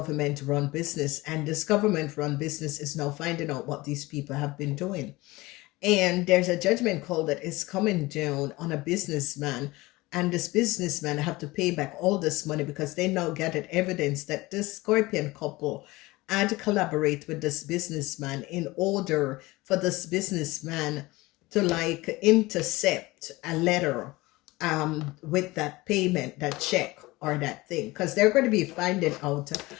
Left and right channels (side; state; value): right; quieter; 20.8 dB